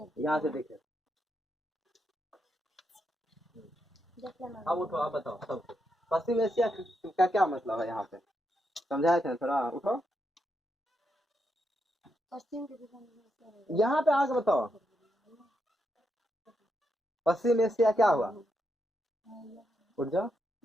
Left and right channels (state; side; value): normal; both; correlation 0.82